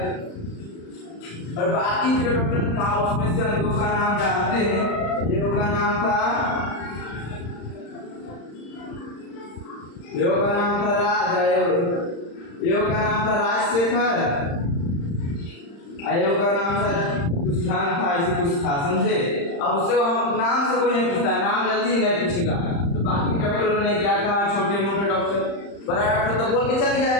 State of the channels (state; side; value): late; right; 35 ms